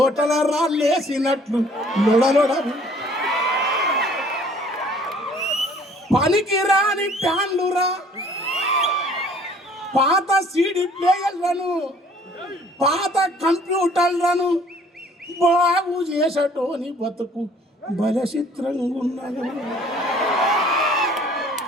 రా లేసినట్లు లొడలొడ. పనికి రాని ప్యాన్లురా. పాత సీడీ ప్లేయర్లను, పాత కంప్యూటర్లను బాగు చేసటోని బతుకు బలచిత్రంగా ఉన్నది.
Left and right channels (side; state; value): both; normal; correlation 0.56